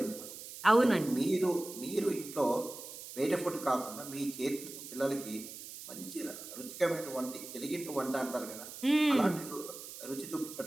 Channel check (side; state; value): right; noise; hiss, 12 dB below the sound